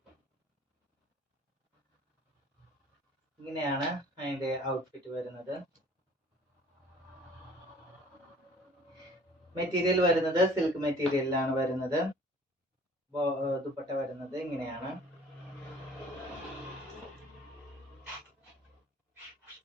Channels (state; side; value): normal; both; correlation 0.51